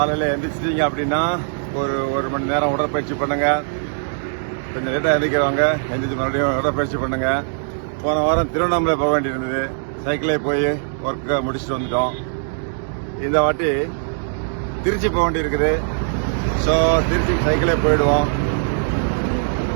எந்திரிச்சிட்டீங்க அப்படின்னா ஒரு மணி நேரம் உடற்பயிற்சி பண்ணுங்க. கொஞ்சம் லேட்டாக எந்திரிக்கிறவங்க எந்திரிச்சு மறுபடியும் உடற்பயிற்சி பண்ணுங்க. போன வாரம் திருவண்ணாமலை போக வேண்டியிருந்தது, சைக்கிளே போய் ஒர்க்கை முடிச்சுட்டு வந்துட்டோம். இந்த வாட்டி திருச்சி போக வேண்டியிருக்குது. ஸோ திருச்சிக்கு சைக்கிளே போயிடுவோம்.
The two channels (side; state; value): left; silent; digital silence